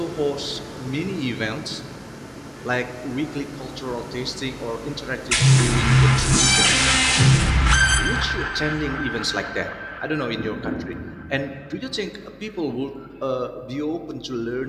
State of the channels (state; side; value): identical; both; correlation 1.00